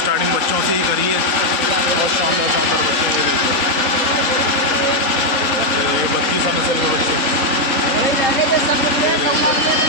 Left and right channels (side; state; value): right; late; 3.8 ms